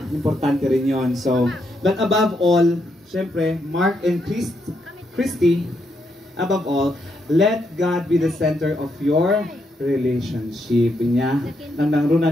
importante rin yon. So, but above all, syempre, Mark and Christy, above all, let God be the center of your relationship niya. Nang nangruna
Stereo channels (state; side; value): normal; both; correlation 0.79